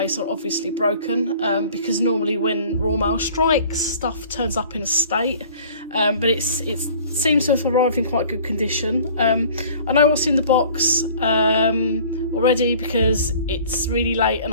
or obviously broken, because normally when Royal Mail strikes, stuff turns up in a state, but it seems to have arrived in quite good condition. I know what's in the box already because it's really late and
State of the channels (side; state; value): both; inverted; correlation -0.49